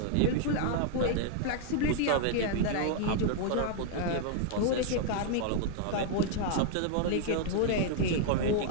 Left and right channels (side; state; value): both; different; correlation -0.01